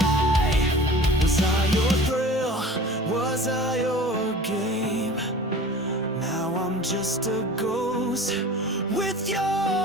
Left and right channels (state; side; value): normal; both; correlation 0.41